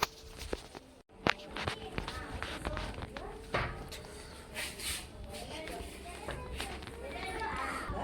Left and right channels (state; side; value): identical; both; correlation 1.00